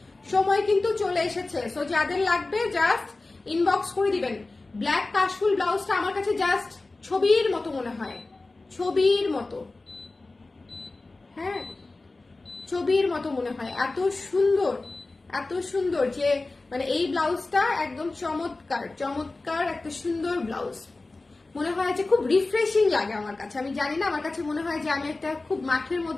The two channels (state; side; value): quieter; right; 3.3 dB